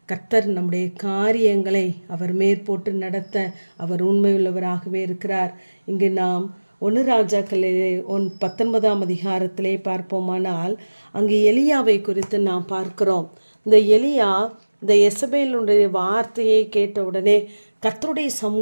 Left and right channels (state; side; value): inverted; both; correlation -1.00